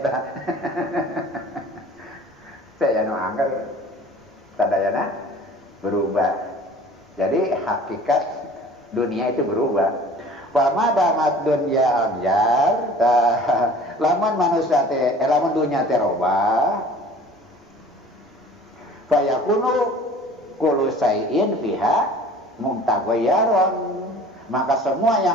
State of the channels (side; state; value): both; normal; correlation 0.46